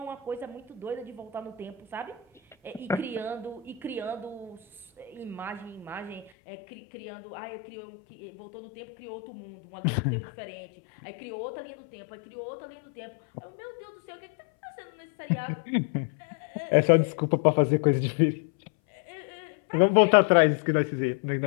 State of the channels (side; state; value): right; drops out; at 6.3 s